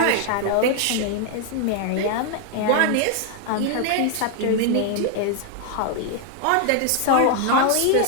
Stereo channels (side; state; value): both; different; correlation 0.00